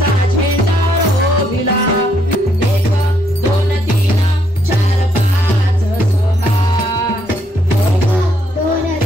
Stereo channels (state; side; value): normal; both; correlation 0.73